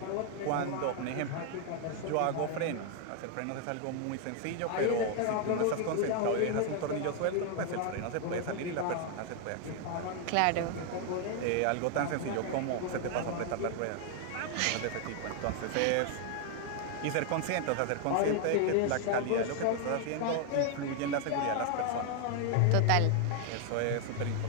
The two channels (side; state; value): both; different; correlation 0.00